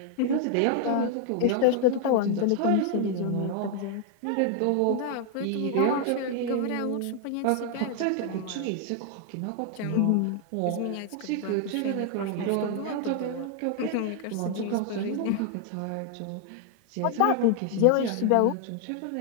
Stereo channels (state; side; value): different; both; correlation 0.00